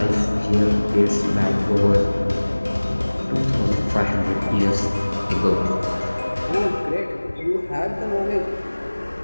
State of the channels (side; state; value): both; inverted; correlation -1.00